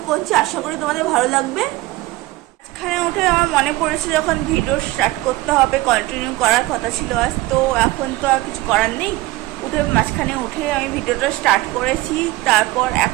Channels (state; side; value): quieter; left; 18.9 dB